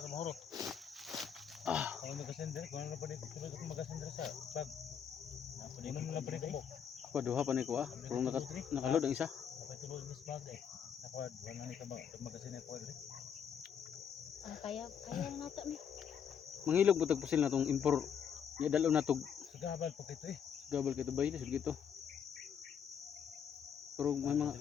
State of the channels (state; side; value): quieter; right; 7.9 dB